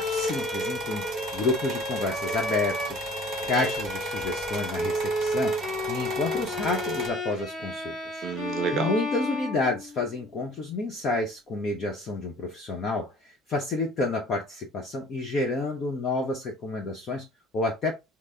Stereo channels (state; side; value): normal; both; correlation 0.49